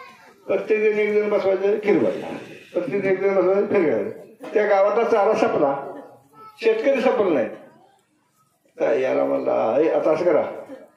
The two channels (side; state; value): both; identical; correlation 1.00